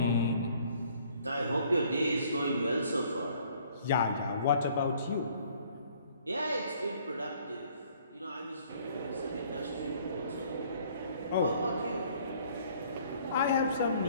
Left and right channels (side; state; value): both; inverted; correlation -0.59